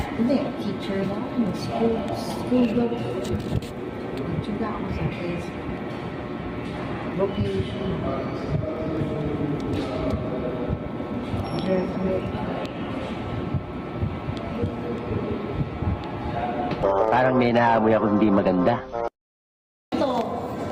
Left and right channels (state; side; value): identical; both; correlation 1.00